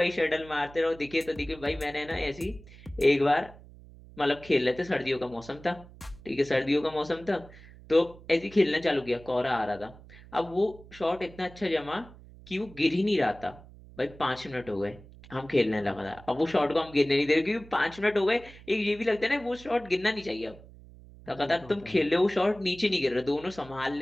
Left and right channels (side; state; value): right; noise; hum, 20 dB below the sound